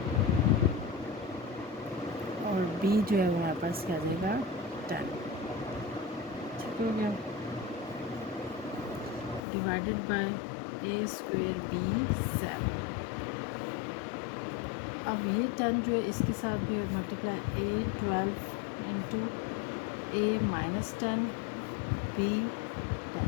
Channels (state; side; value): drops out; right; at 9.4 s